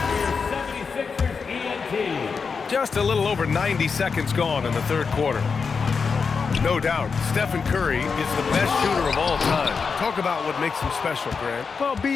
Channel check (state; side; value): quieter; right; 5.4 dB